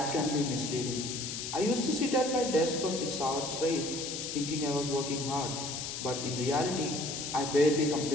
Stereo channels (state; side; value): noise; left; hiss, 5 dB below the sound